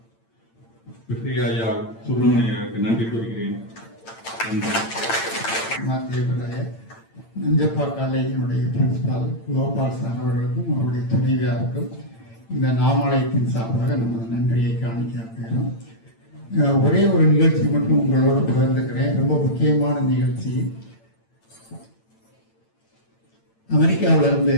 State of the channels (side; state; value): right; late; 8.9 ms